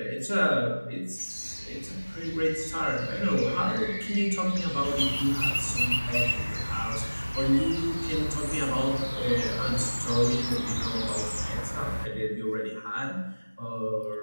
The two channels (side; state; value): both; inverted; correlation -1.00